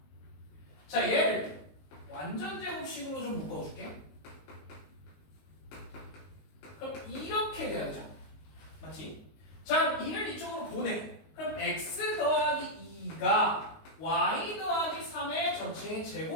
자, 얘를 완전 제곱식으로 좀 묶어줄게. 그럼 이렇게 돼야 되죠. 맞지? 자, 2를 이쪽으로 보내. 그럼 x 더하기 2가 y 더하기 3의 전체의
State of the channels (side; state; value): right; late; 19 ms